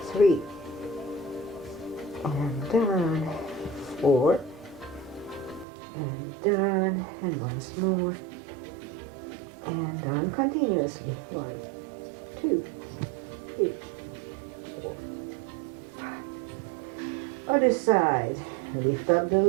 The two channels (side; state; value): left; drops out; at 5.7 s